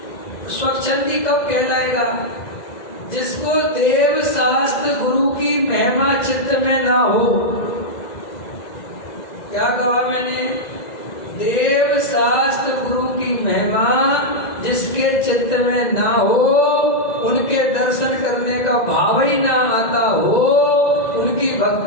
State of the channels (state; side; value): late; right; 2.0 ms